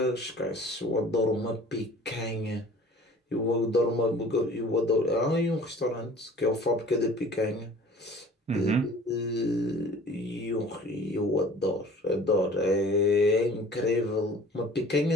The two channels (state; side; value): normal; both; correlation 0.47